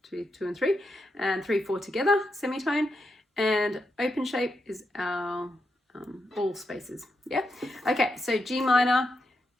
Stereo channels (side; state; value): both; normal; correlation 0.85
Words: 2, 2 and 3, and 3, 4 together, semitone. And open shape is our all spaces. Yeah. Okay. So G minor,